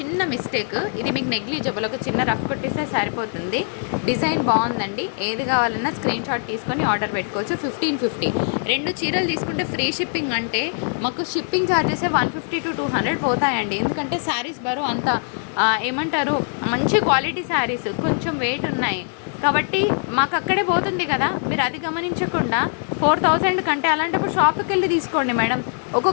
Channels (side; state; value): right; silent; 61 dB below the other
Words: మిస్టేక్, ఇది మీకు నెగ్లిజిబుల్, ఒక చిన్న రఫ్ కొట్టేస్తే సరిపోతుంది. డిజైన్ బాగుందండి. ఏది కావాలన్నా స్క్రీన్ షాట్ తీసుకొని ఆర్డర్ పెట్టుకోవచ్చు. 1550. 2 చీరలు తీసుకుంటే ఫ్రీ షిప్పింగ్ అంటే మాకు షిప్పింగ్ ఛార్జెసే 150 to 200 పోతాయండి. ఎందుకంటే శారీస్ బరువు అంత ఏమంటారు, మంచి క్వాలిటీ శారీస్ కొంచెం వెయిట్ ఉన్నాయి కాబట్టి మాకు అక్కడే పోతుంది కదా. మీరు అది గమనించకుండా 4000 కంటే అలాంటప్పుడు షాప్కి వెళ్ళి తీసుకోండి మేడం.